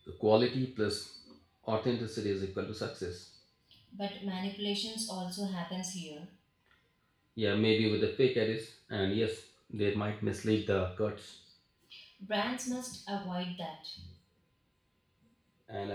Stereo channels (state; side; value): identical; both; correlation 1.00